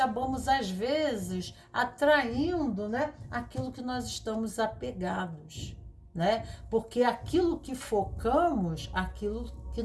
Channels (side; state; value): both; identical; correlation 1.00